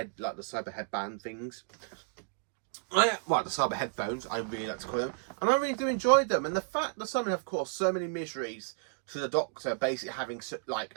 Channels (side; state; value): left; silent; digital silence